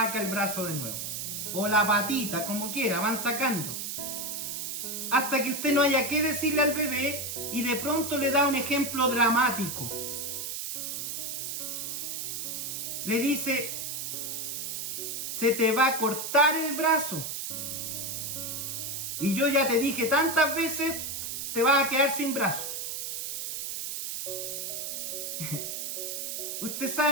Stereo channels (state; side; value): noise; right; hiss, 4 dB below the sound